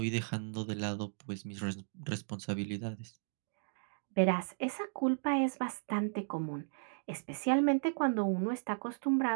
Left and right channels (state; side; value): silent; left; digital silence